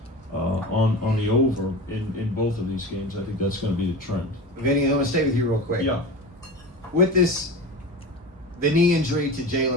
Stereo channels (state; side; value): normal; both; correlation 0.29